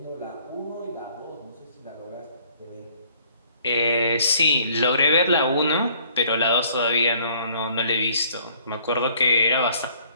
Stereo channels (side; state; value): both; inverted; correlation -0.59